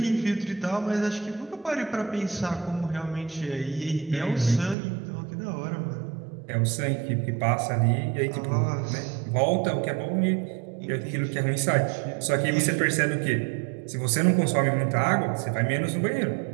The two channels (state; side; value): drops out; left; at 4.8 s